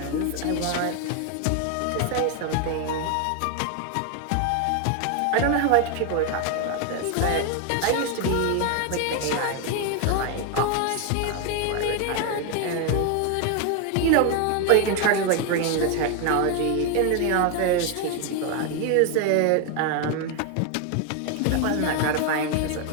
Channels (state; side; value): different; both; correlation 0.01